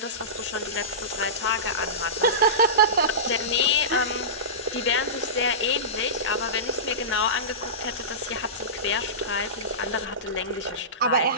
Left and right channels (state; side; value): normal; both; correlation -0.20